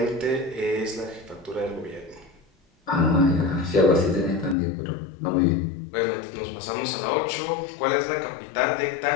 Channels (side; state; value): right; drops out; at 4.5 s